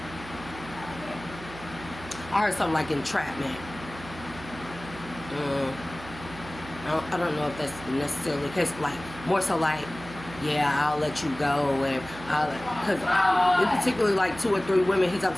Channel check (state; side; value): noise; right; hum, 15 dB below the sound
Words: heard something like entrapment. I don't know if that's necessarily the case. Like, more so like, yeah, I'll let you go, and because in particularly like 2 or 3 women he